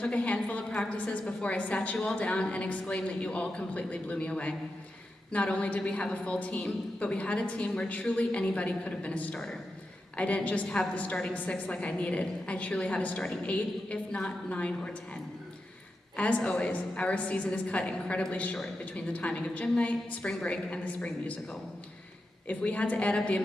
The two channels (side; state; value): both; normal; correlation 0.89